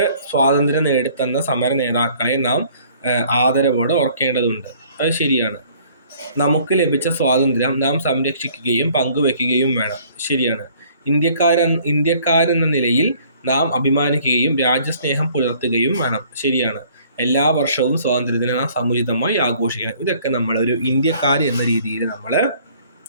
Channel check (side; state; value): both; inverted; correlation -0.57